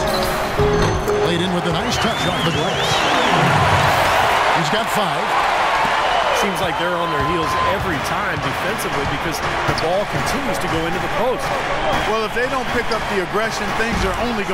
Laid in with a nice touch off the glass. He's got 5. Seems like they're on their heels every time defensively because the ball continues to go into the post. Well, if they don't pick up the aggression, things are only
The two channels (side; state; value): both; identical; correlation 1.00